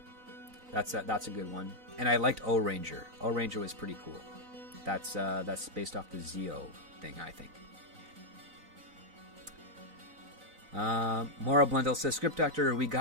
That's a good one. And I liked O Ranger. O Ranger was pretty cool. That's based off the Zeo thing, I think. Mora Blundell says, Script Doctor, we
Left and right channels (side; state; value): left; late; 3.9 ms